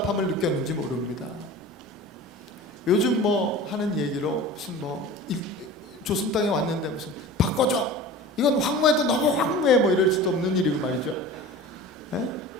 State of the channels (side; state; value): both; normal; correlation 0.37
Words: 느꼈는지 모릅니다. 요즘 뭐 하는 얘기로 무슨 조선 땅에 왔는데 무슨 바꿔줘, 이건 황무해도 너무 황무해, 뭐 이럴 수도 없는 일이고 말이죠. 에?